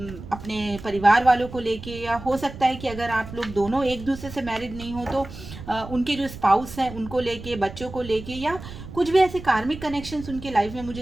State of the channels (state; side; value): noise; right; rumble, 13 dB below the sound